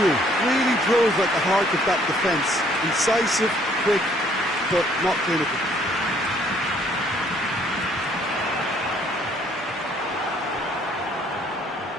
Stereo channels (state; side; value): normal; both; correlation 0.63